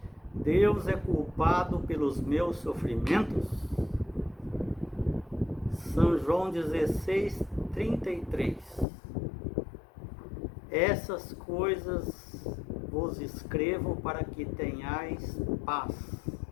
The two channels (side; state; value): right; drops out; at 8.8 s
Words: Deus é culpado pelos meus sofrimentos? São João 16, 33. Essas coisas vos escrevo para que tenhais paz.